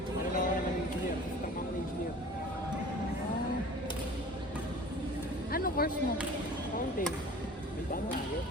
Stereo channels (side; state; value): both; normal; correlation 0.43